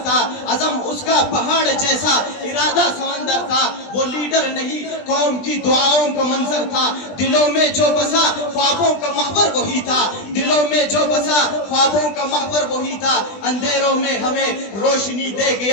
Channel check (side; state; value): right; late; 20 ms